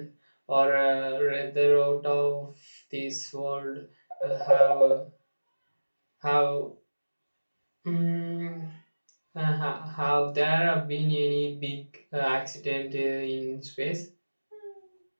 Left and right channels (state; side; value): inverted; both; correlation -1.00